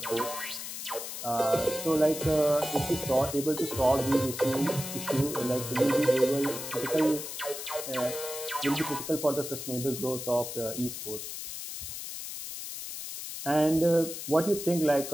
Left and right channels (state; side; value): noise; left; hiss, 7 dB below the sound